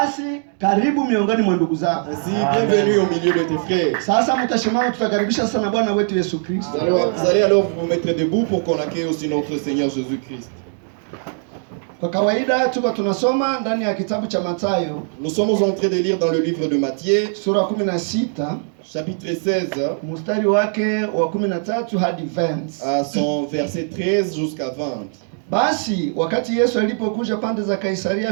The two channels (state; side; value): silent; left; 58 dB below the other